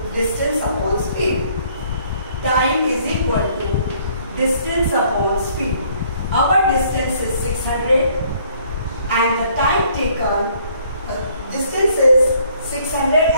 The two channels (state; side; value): inverted; both; correlation -0.62